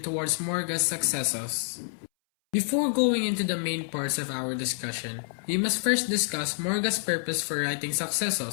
towards Morga's successors. Before going into the main parts of our discussion, we must first discuss Morga's purpose for writing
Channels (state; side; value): silent; right; 59 dB below the other